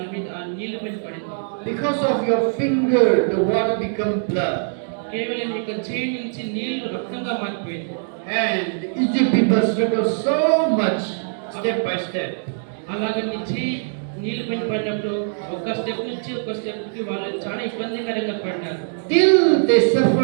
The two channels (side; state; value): left; silent; digital silence